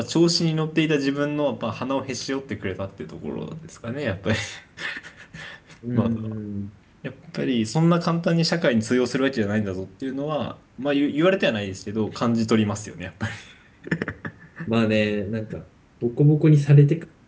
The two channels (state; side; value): identical; both; correlation 1.00